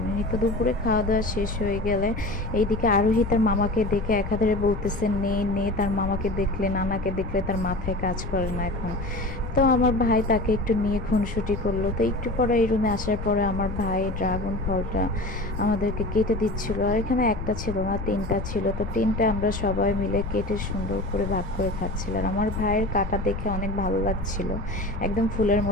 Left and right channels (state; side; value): noise; left; rumble, 7 dB below the sound